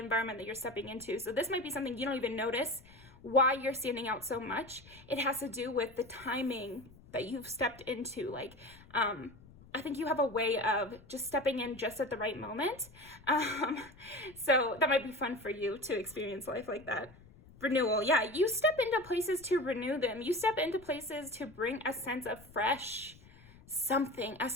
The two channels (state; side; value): noise; left; rumble, 23 dB below the sound